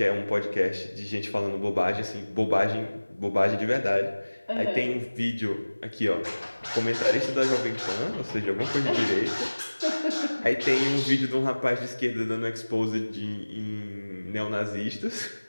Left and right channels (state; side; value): inverted; both; correlation -1.00